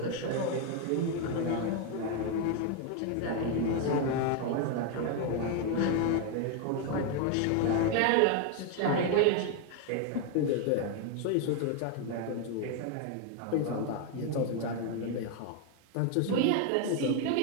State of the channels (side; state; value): both; different; correlation 0.01